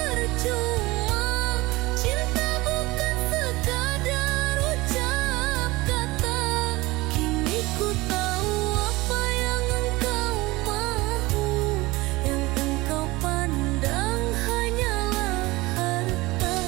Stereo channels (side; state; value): left; quieter; 21.2 dB